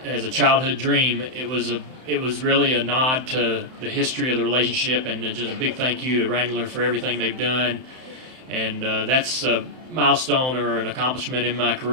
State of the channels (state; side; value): late; left; 31 ms